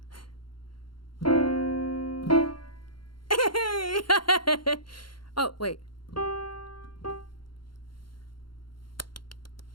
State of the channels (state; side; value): late; right; 0.72 ms